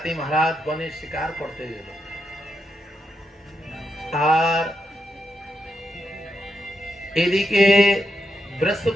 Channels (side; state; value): both; normal; correlation 0.83